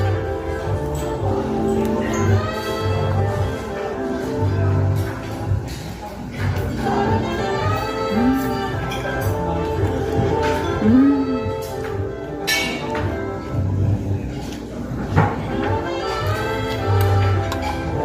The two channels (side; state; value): both; identical; correlation 1.00